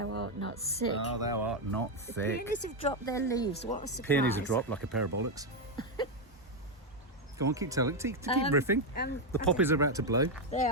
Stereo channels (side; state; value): both; normal; correlation 0.04